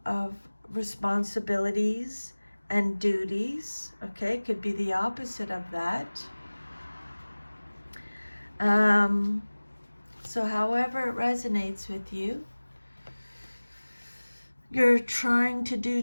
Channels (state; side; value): inverted; both; correlation -1.00